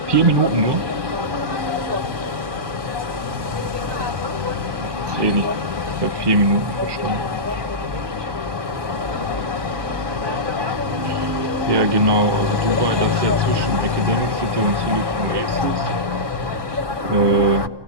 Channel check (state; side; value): late; left; 1.2 ms